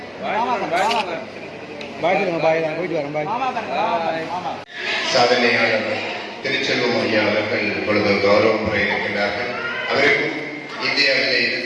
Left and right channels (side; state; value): both; identical; correlation 1.00